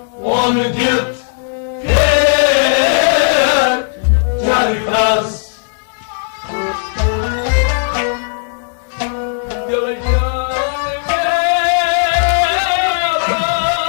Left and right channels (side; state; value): right; silent; digital silence